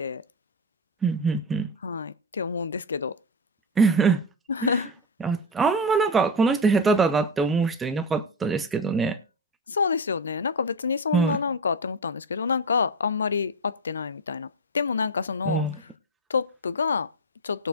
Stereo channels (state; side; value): normal; both; correlation 0.18